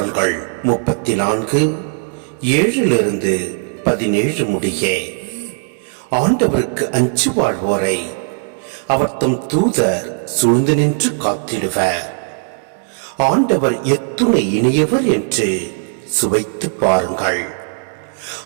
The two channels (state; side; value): silent; left; 68 dB below the other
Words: 34 7-17 முடிய. ஆண்டவருக்கு அஞ்சு வாழ்வோரை அவர் தம் தூதர் சூழ்ந்து நின்று காத்திடுவர். ஆண்டவர் எத்துணை இனியவர் என்று சுவைத்து பாருங்கள்.